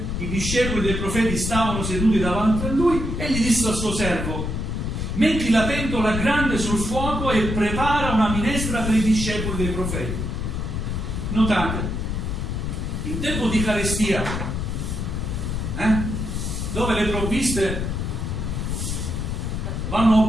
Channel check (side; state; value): left; noise; rumble, 2 dB below the sound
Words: i discepoli dei profeti stavano seduti davanti a lui, egli disse al suo servo: metti la pentola grande sul fuoco e prepara una minestra per i discepoli dei profeti. Notate, in tempo di Eucaristia, dove le provviste vanno